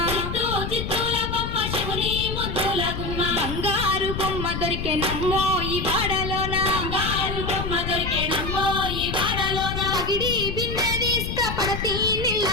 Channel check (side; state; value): left; noise; rumble, 4 dB below the sound